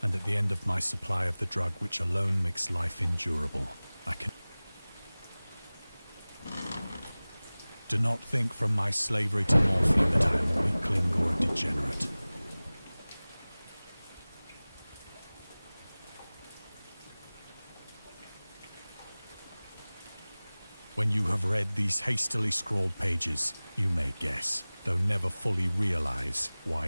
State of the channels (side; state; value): both; inverted; correlation -0.99